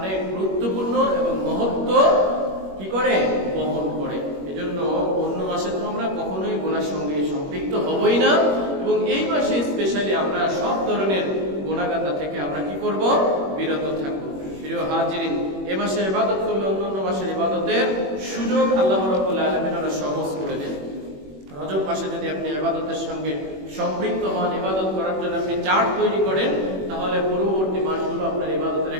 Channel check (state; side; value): late; left; 21 ms